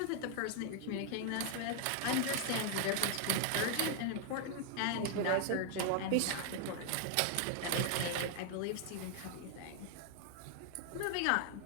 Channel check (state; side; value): different; both; correlation 0.00